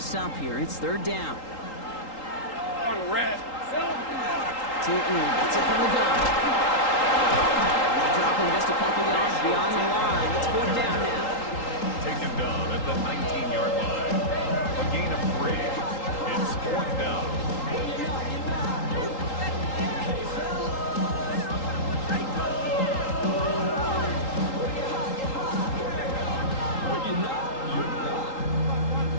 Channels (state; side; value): late; right; 3.8 ms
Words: here. It's 3rd down. On red. Tootin gets it from the gun. And they drop him just a couple yards beyond the line. It's 4th down now. Taken down at the 19-yard line. A gain of 3. It's 4th down.